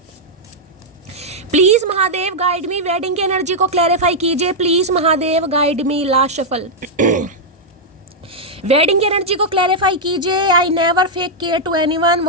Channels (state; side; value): normal; both; correlation -0.04